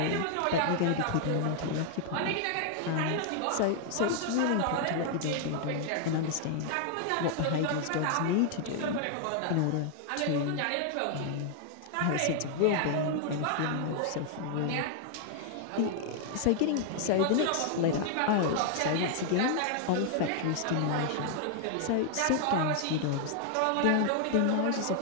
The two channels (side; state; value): both; different; correlation 0.00